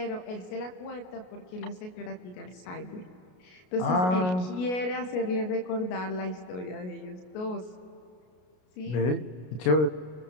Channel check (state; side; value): late; right; 33 ms